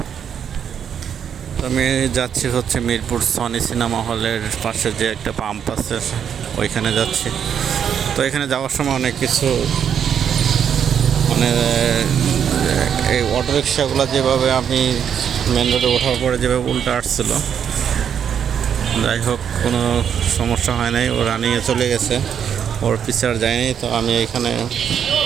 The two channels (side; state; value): left; quieter; 8.2 dB